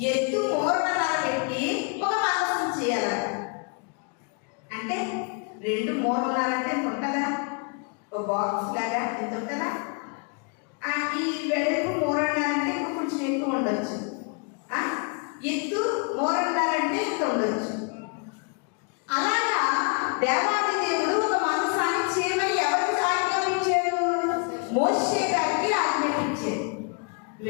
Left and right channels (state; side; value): quieter; right; 36.4 dB